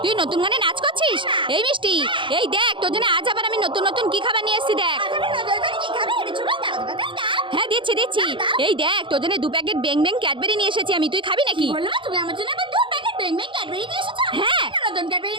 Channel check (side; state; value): left; late; 0.24 ms